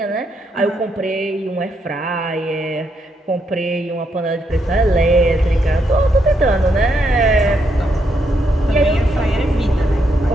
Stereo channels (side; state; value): both; normal; correlation 0.78